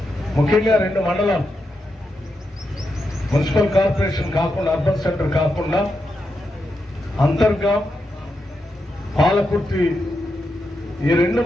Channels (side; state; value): both; normal; correlation 0.85